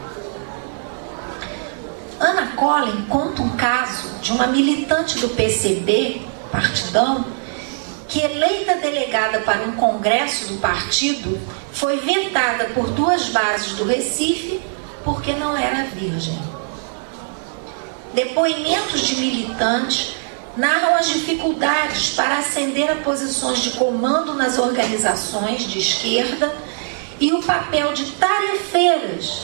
Ana Collin conta um caso de uma militante do PCB, partidão, que, eleita delegada para um congresso do partido, foi vetada por 2 bases do Recife porque não era virgem. Depoimentos de militantes narram as dificuldades para ascender a posições de comando nas organizações de esquerda e o papel de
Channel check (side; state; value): left; silent; 64 dB below the other